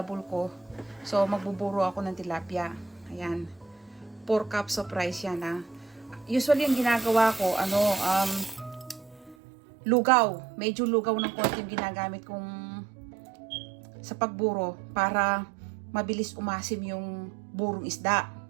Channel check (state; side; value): drops out; left; at 9.3 s